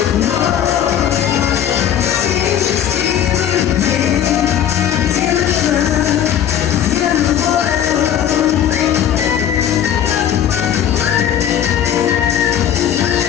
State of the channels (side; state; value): right; quieter; 9.8 dB